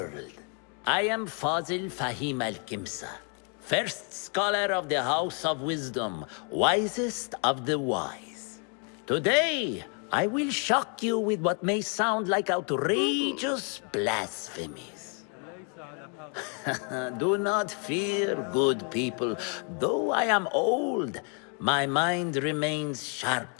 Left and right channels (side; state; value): right; quieter; 39.3 dB